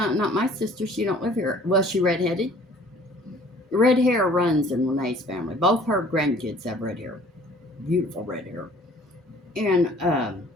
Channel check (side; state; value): both; normal; correlation 0.53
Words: not my sister. She don't live here. Was she redheaded? Red hair runs in Renee's family. Both her grandkids have red hair. Beautiful red hair. And